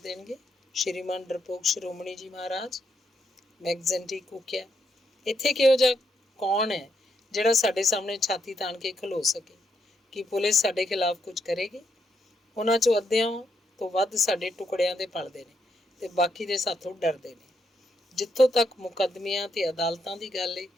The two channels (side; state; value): both; normal; correlation 0.78